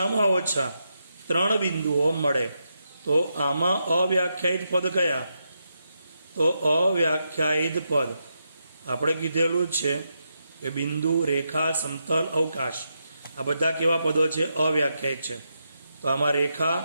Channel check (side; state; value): both; inverted; correlation -0.83